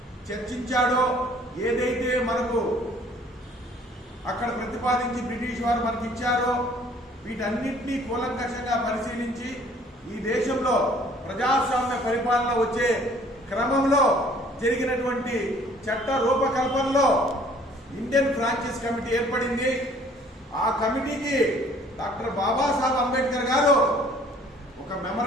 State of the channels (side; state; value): both; normal; correlation 0.56